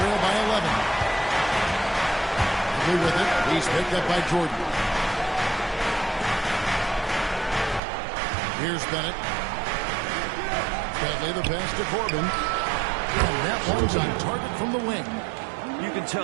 by 11. With it. He's picked up by Jordan. Here's Bennett. Dudley the pass to Corbin. And that one's on target from the wing. You can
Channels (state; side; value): drops out; left; at 7.8 s